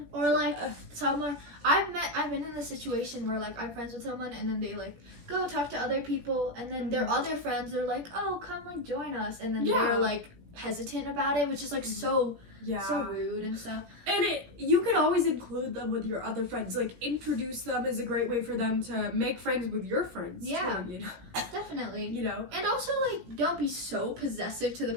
Or like someone I've been in a situation where like I'm friends with someone and then they like go talk to other people, and then their other friends are like, oh, come like join us, and then they're like hesitant about it, which is like so rude and stuff. And you could always include them with your other friends. Like, introduce them is a great way for them to make friends with your friends too, you know? Definitely. You know? And also, like, don't be so possessive to the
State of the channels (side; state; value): left; late; 17 ms